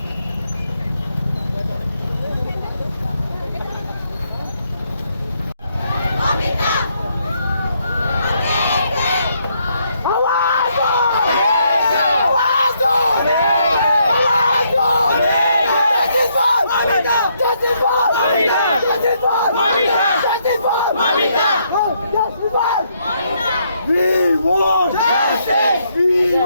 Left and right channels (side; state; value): both; inverted; correlation -0.73